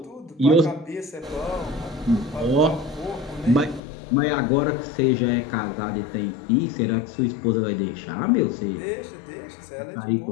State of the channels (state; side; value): drops out; right; at 3.8 s